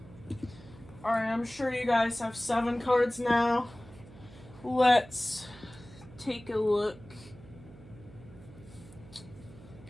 Alright, I'm sure you guys have 7 cards now. Let's take a look.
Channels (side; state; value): right; noise; hum, 19 dB below the sound